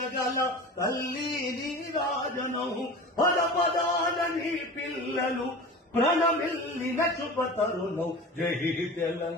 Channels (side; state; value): both; normal; correlation 0.34